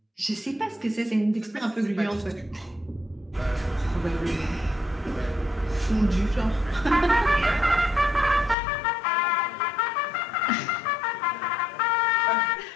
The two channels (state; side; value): drops out; right; at 8.6 s